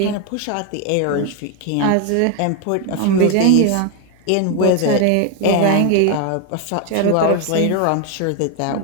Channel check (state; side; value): different; both; correlation 0.01